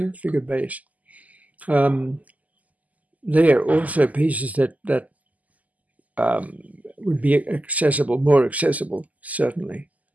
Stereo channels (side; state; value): left; late; 0.076 ms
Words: figured bass. They are also pieces that would be accessible, more accessible, certainly.